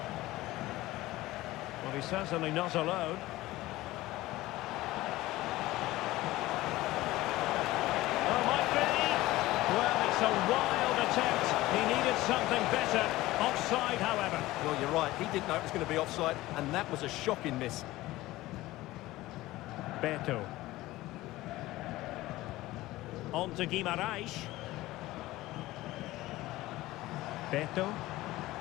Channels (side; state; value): right; quieter; 17.6 dB